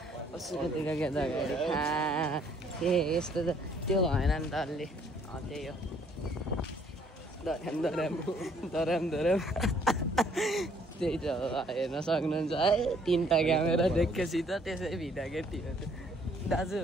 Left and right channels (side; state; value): both; normal; correlation 0.63